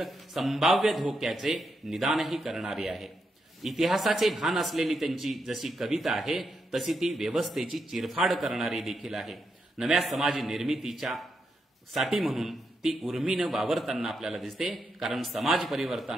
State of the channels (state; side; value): normal; both; correlation 0.83